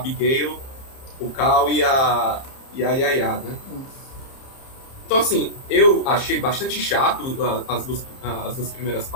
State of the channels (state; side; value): late; right; 30 ms